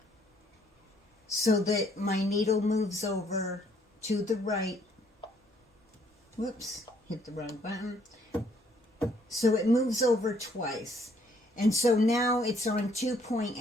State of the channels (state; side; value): normal; both; correlation 0.66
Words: so that my needle moves over to the right. Whoops, hit the wrong button. So it moves over twice. And so now it's on